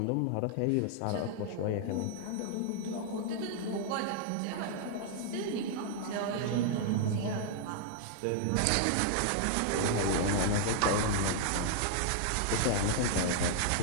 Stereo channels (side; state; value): both; different; correlation 0.00